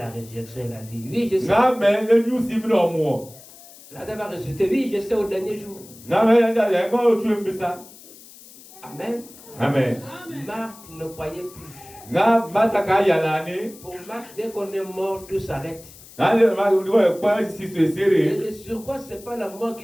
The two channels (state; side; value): noise; left; hiss, 20 dB below the sound